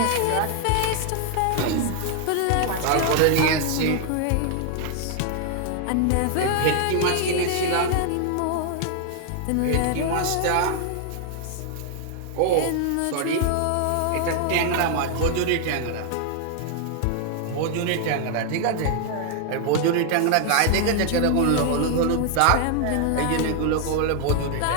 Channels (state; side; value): different; both; correlation 0.00